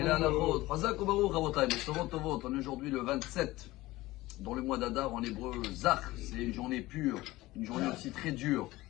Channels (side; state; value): right; quieter; 18.5 dB